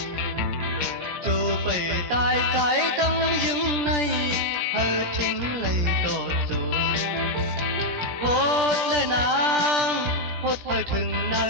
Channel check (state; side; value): late; left; 17 ms